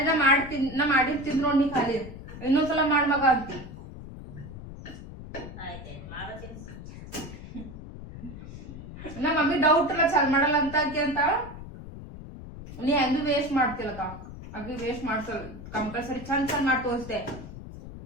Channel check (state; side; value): noise; left; rumble, 13 dB below the sound